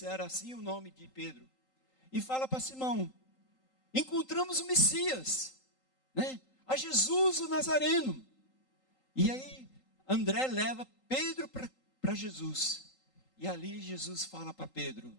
era assim o nome de Pedro. E fala para Simão: encontramos o Messias, né? A Jesus o Nazareno. E aí André leva Pedro para Jesus. E ali Jesus fala para Pedro:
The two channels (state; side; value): late; right; 3.8 ms